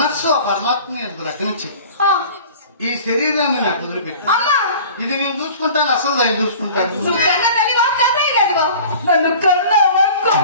ఆ పరమాత్మ ఎందుకు రకనిచ్చి ఈ శరీరాన్ని నాకు వదిలిపెట్టి ఇది నేను చూసుకుంటాను. అసలు దాన్ని చూసుకుంటాను.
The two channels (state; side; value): inverted; both; correlation -0.43